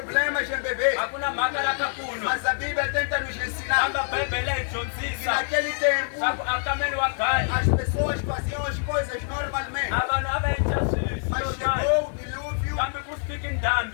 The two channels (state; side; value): silent; right; digital silence